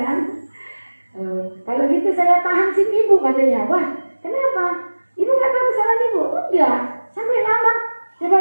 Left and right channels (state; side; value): inverted; both; correlation -1.00